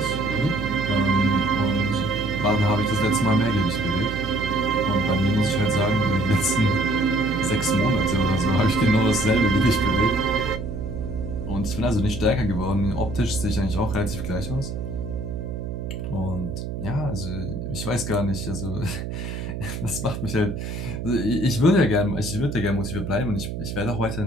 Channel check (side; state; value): right; noise; hum, 6 dB below the sound